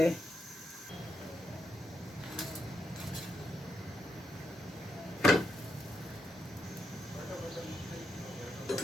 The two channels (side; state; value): both; normal; correlation 0.82